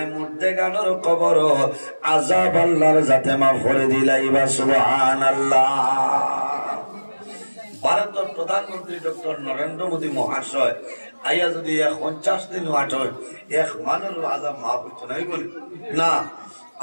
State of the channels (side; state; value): both; inverted; correlation -1.00